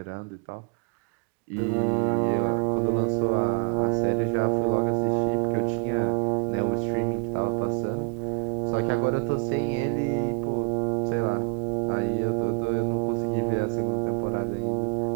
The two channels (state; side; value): quieter; left; 34.0 dB